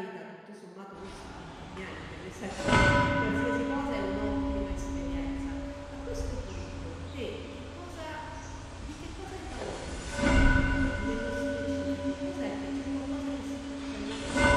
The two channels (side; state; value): both; identical; correlation 1.00